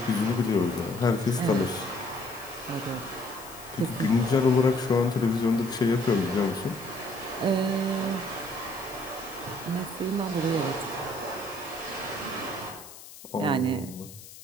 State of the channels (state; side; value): noise; left; hiss, 17 dB below the sound